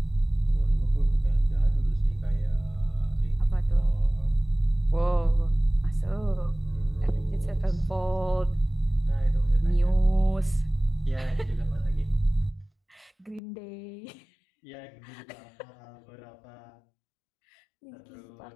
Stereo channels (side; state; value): right; drops out; at 13.4 s